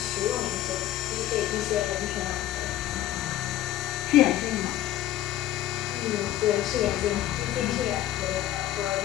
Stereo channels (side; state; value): right; quieter; 13.5 dB